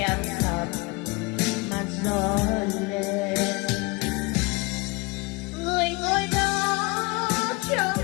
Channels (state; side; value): quieter; right; 25.8 dB